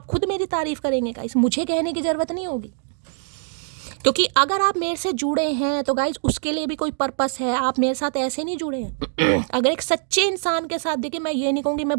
खुद मेरी तारीफ करेंगे गाइस। मुझे कहने की ज़रूरत नहीं होगी, क्योंकि अगर आप मेरे से जुड़े हैं तो गाइज उसके लिए भी कोई पर्पस है। आप मेरे साथ ऐसे नहीं जुड़े हैं। अगर एक सच्चे इंसान के साथ, देखिए मैं ये नहीं कहूँगी मैं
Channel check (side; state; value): left; silent; digital silence